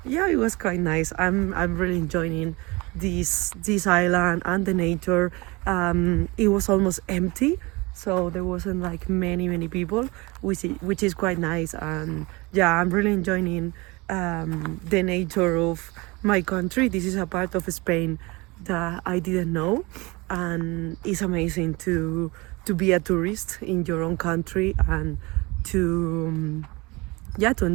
yeah, it was quite nice. I'm really enjoying this island and the nature. It was almost empty, so there wasn't like many people, which is quite nice. And yeah, I'm really enjoying the nature of my country. This is a part of Spain that I didn't know, and it's amazing to be a tourist in your own country and to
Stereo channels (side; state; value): left; quieter; 24.6 dB